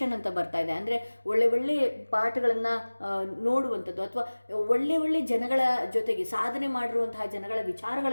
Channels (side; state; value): both; inverted; correlation -1.00